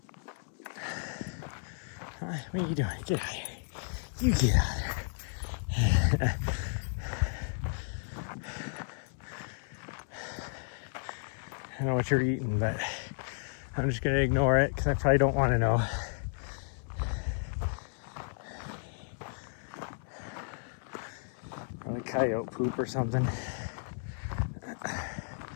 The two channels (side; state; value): right; silent; 56 dB below the other